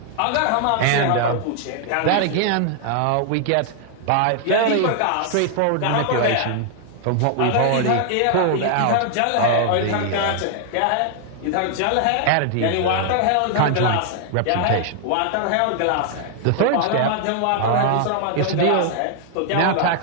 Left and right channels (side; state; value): both; different; correlation 0.00